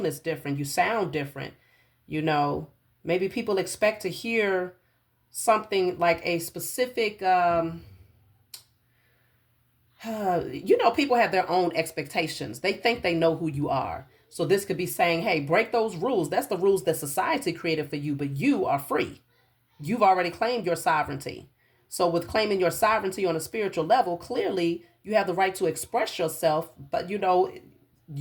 is different. You sound different. You know, maybe people expect to hear something like a specific, you know, people have their own expectations. They think they know who you are. So this could be saying, hey, break those rules. That's the rules that society created for you, but you are free. You've already claimed your sovereignty. So with claiming your sovereignty on a spiritual level, clearly you have the right to express yourself, but you know,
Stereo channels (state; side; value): identical; both; correlation 1.00